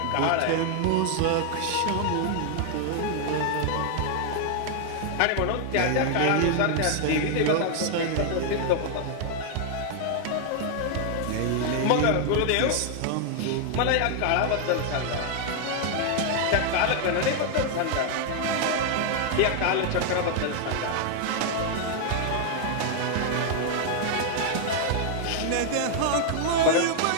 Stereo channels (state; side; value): different; both; correlation 0.00